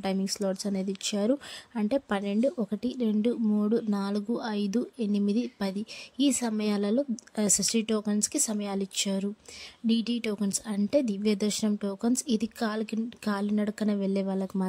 టైమింగ్ స్లాట్స్ అనేది ఇచ్చారు. అంటే 12, 1, 2, 3, 4, 5, 8, 10 ఈ సమయాలలో ఎస్ఎస్డి టోకన్స్కి సమయాలు ఇచ్చారు. డిడి టోకన్స్ అంటే దివ్య దర్శనం టోకన్స్. ఇది కాలినడకన వెళ్ళే వాళ్ళకి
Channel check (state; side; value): identical; both; correlation 1.00